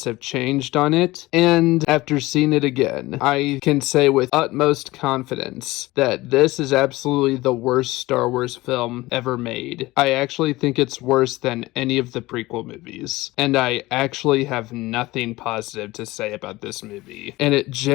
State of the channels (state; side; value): quieter; right; 19.5 dB